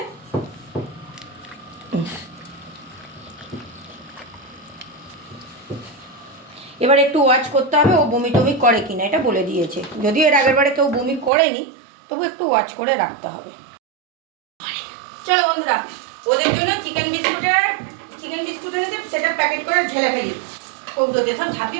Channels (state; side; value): drops out; left; at 11.3 s